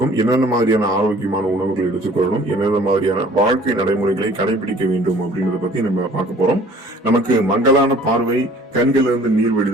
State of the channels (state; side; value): normal; both; correlation 0.52